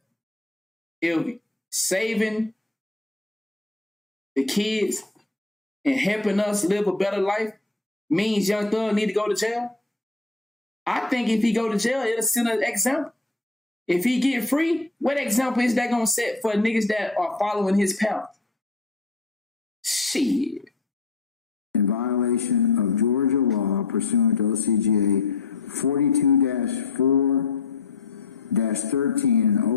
if saving the kids and helping us live a better life means Young Thug need to go to jail, I think if he go to jail, it'll send an example. If he get free, what example is that going to set for niggas that are following his path? Shit. In violation of Georgia law pursuant to OCGA 42-4-13, an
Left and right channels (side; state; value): right; quieter; 3.7 dB